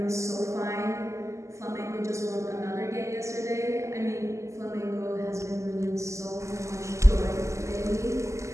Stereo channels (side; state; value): left; late; 0.14 ms